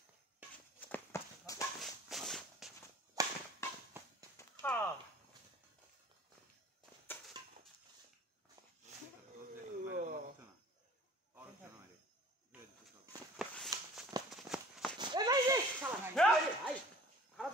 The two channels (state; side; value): normal; both; correlation 0.48